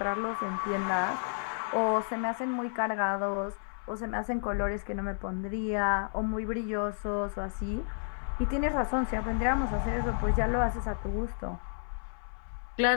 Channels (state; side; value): silent; right; 57 dB below the other